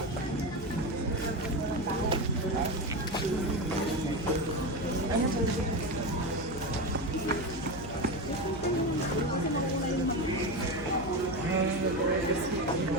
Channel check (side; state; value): left; noise; hum, 12 dB below the sound